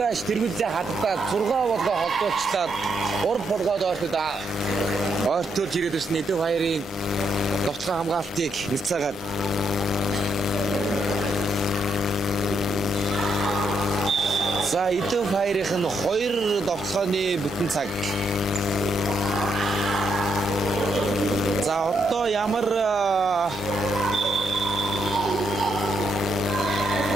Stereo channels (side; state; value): both; normal; correlation 0.77